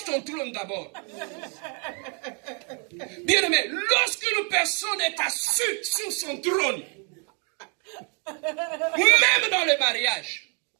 ton trône d'abord. Bien aimé, lorsqu'une personne est assise sur son trône, même dans le mariage,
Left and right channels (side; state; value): left; quieter; 38.2 dB